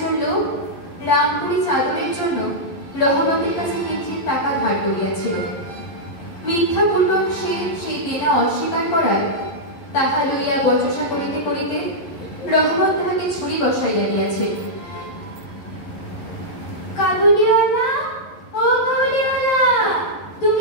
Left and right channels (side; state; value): right; late; 11 ms